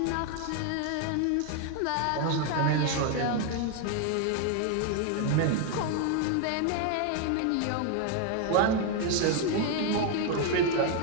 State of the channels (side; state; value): both; different; correlation 0.01